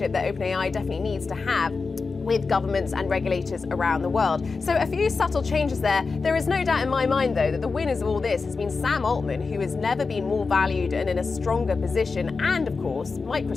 that OpenAI definitely needs to have with governments and regulators around the world. So a few subtle changes there. There is no doubt in my mind, though, that the winners of all this has been Sam Altman, who has never been more valued and in a stronger position, and of course,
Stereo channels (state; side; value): quieter; right; 4.4 dB